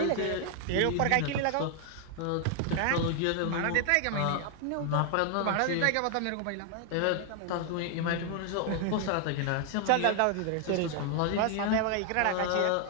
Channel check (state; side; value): different; both; correlation 0.00